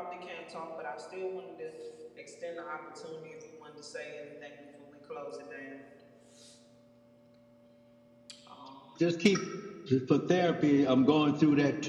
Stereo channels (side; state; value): both; identical; correlation 1.00